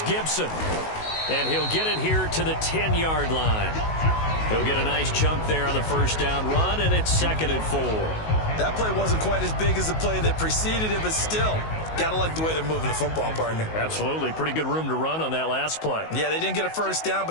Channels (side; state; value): right; late; 19 ms